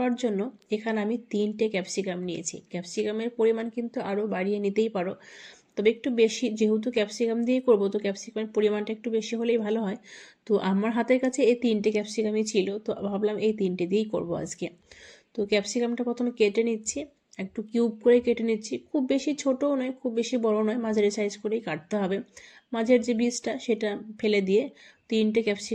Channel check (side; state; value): both; identical; correlation 1.00